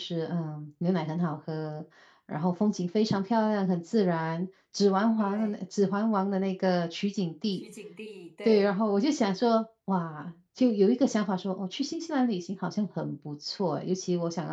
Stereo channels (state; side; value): identical; both; correlation 1.00